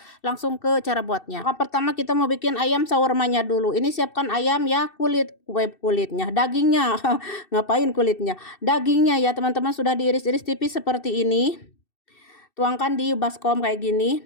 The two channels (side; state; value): right; late; 2.6 ms